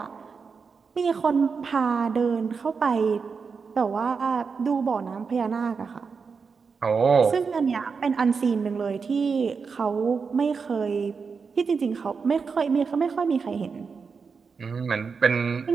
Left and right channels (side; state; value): left; quieter; 5.3 dB